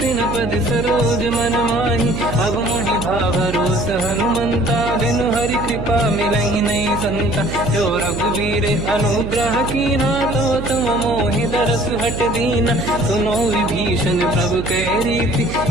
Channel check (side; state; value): right; noise; hum, 7 dB below the sound